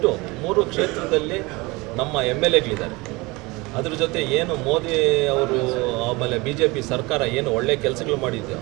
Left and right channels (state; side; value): quieter; left; 23.8 dB